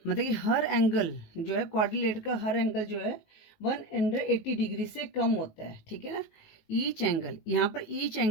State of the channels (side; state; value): right; late; 19 ms